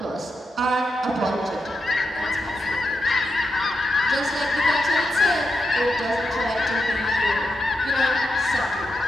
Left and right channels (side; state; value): both; normal; correlation 0.86